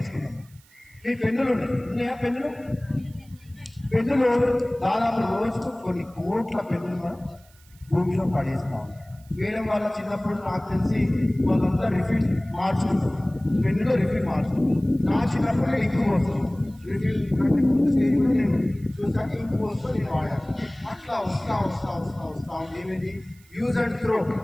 ఈ పెన్నులు ఉన్నాయా? పెన్నులు దాదాపు రోజుకు కొన్ని కోట్ల పెన్నులు మనం భూమిలో పడేస్తాం. వేయడం వల్ల చిన్నప్పుడు నాకు తెలిసి వాళ్ళంతా రిఫిల్ మార్చుకుంటారు, పెన్నులో రిఫిల్ మార్చుకుంటారు. నా చిన్నప్పుడు ఇంకు పోస్తుంది, రిఫిల్ కంటే ముందు స్టేజ్లో నేను చూసాను, ఇంకు పోస్తూ నేను వాడాను. అట్లా వస్తా ఏమిటి? Use and throw.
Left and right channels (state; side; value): noise; right; hiss, 28 dB below the sound